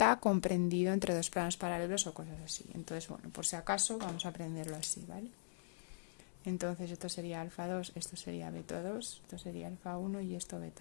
comprendido entre dos planos paralelos o cosas así. Entonces, bueno, por si acaso vamos a aprenderlo así, ¿vale? Entonces esto sería alfa 2, esto sería beta 2, esto sería alfa 1 y esto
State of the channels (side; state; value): right; silent; digital silence